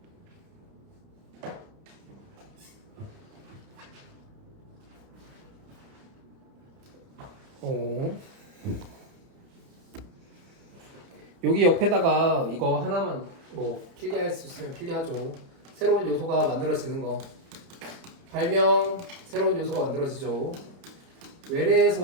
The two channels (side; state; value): left; late; 30 ms